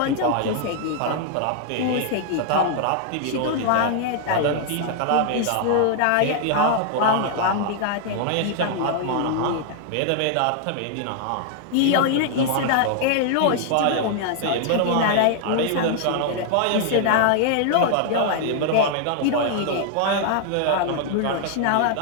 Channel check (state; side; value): different; both; correlation -0.01